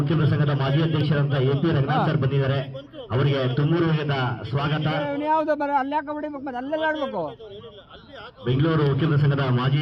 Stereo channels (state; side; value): identical; both; correlation 1.00